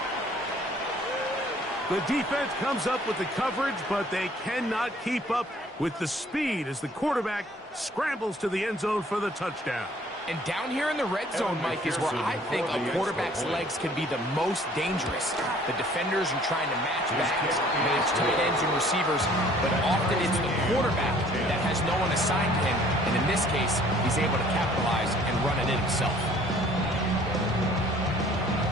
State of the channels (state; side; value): normal; both; correlation 0.56